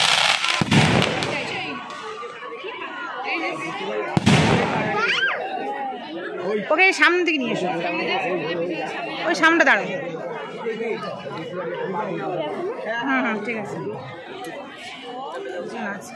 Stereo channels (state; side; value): identical; both; correlation 1.00